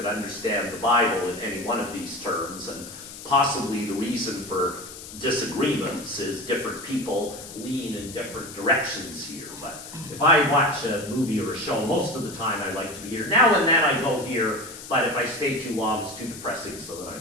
understand the Bible in any one of these terms, and possibly the reason for disagreements is different people lean in different directions here. But if I watch a movie or a show, most of the time I like to be here. Now and then I go here, but if I stay too long, it's too depressing, so then I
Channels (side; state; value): left; noise; hiss, 13 dB below the sound